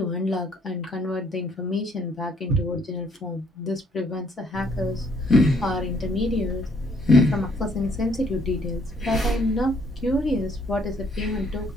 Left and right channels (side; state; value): both; normal; correlation 0.65